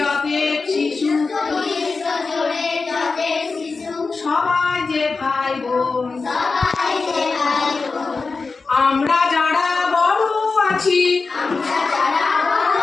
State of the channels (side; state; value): right; quieter; 4.2 dB